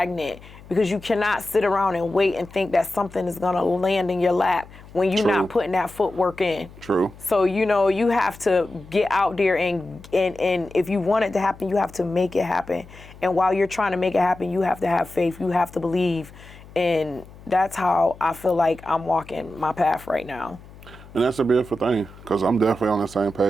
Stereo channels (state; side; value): noise; left; hum, 20 dB below the sound